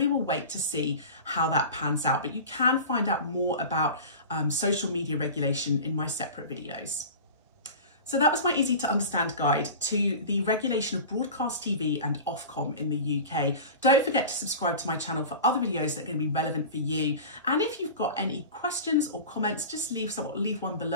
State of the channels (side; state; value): both; inverted; correlation -0.34